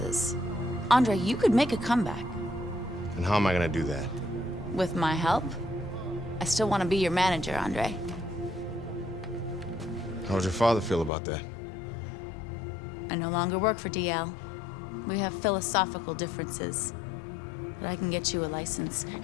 Andre, you could make a comeback. And how am I gonna do that? With my help? I still want to be your manager, Andre. How would your father feel about that? I no longer work for DL. We have philosophical differences. But I can get you a license,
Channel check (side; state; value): right; drops out; at 11.1 s